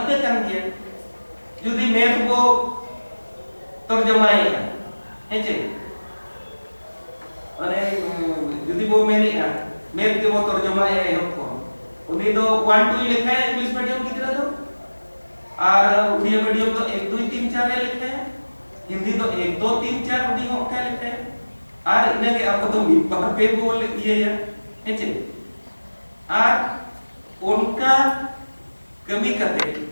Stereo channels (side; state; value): both; inverted; correlation -1.00